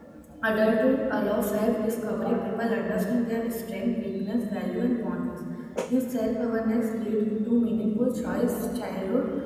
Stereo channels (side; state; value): both; identical; correlation 1.00